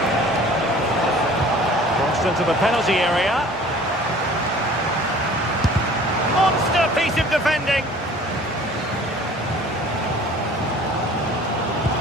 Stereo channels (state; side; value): normal; both; correlation 0.48